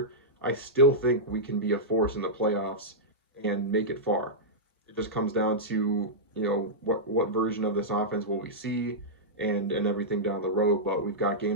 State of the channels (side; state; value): both; normal; correlation -0.11